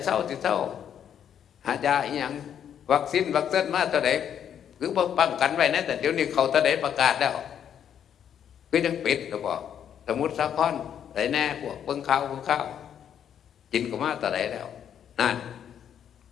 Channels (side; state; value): right; quieter; 9.0 dB